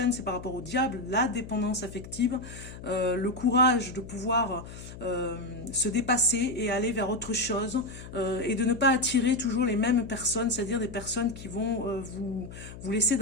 c'est par rapport au diable, la dépendance affective, le courage de pouvoir se dépasser et aller vers autre chose, et de ne pas attirer toujours les mêmes personnes, c'est-à-dire des personnes qui vont vous laisser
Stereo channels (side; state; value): left; noise; hum, 13 dB below the sound